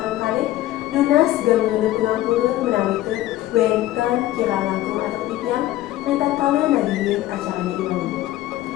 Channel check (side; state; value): right; quieter; 15.0 dB